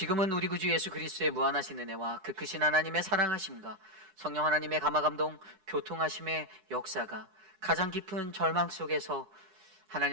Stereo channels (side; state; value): left; late; 9.9 ms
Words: 우리 구주 예수 그리스도의 무한하신 은혜와 그 크신 하나님의 사랑하심과 성령 하나님의 감화감동 교통하심의 역사가 가장 깊은 절망 속에서